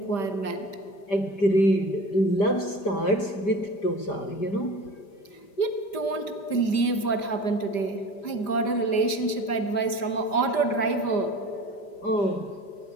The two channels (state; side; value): late; right; 5.0 ms